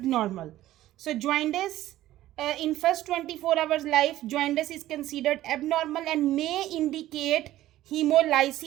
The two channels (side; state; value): left; quieter; 14.6 dB